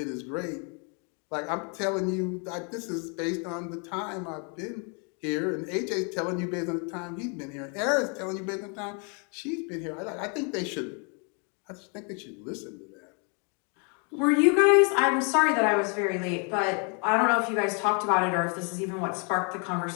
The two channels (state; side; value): quieter; right; 36.8 dB